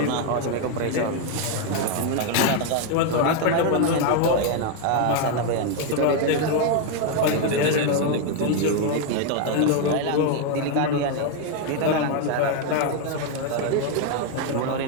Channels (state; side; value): different; both; correlation 0.01